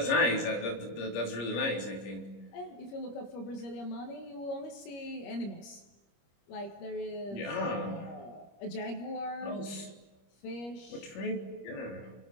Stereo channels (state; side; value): late; right; 25 ms